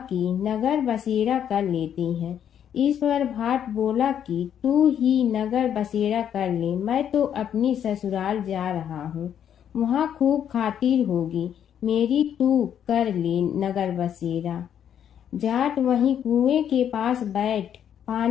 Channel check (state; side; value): quieter; right; 9.3 dB